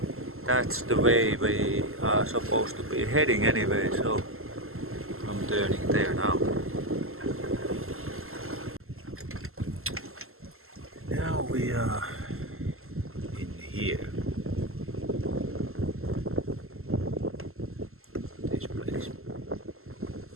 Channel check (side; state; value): left; late; 0.62 ms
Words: that's the way we are supposed to be heading anyway, so I'm turning there now. Now we are in here. This place.